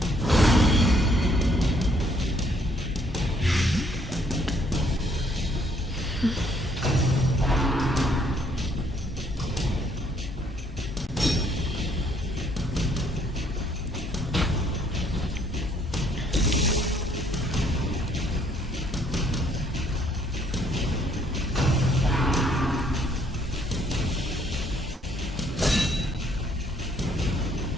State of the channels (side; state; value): both; normal; correlation 0.66